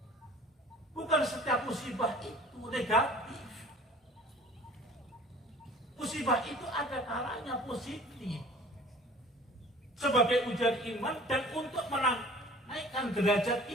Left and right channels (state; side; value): normal; both; correlation 0.47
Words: Bukan setiap musibah itu negatif. Musibah itu ada kalanya positif. Sebagai ujian iman dan untuk menaikkan derajat